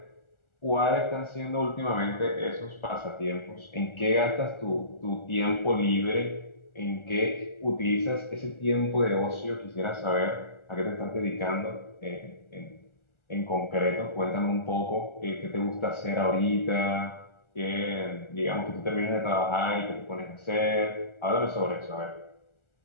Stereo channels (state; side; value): late; right; 1.4 ms